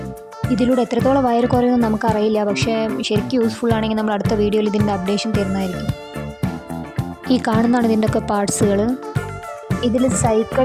ഇതിലൂടെ എത്രത്തോളം വയറ് കുറയുമെന്ന് നമുക്കറിയില്ല, പക്ഷേ ശരിക്കും യൂസ്ഫുൾ ആണെങ്കിൽ നമ്മൾ അടുത്ത വീഡിയോയിൽ ഇതിൻ്റെ അപ്ഡേഷൻ തരുന്നതായിരിക്കും. ഈ കാണുന്നതാണ് ഇതിൻ്റെയൊക്കെ പാർട്സുകൾ. ഇതിൽ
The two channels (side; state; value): both; identical; correlation 1.00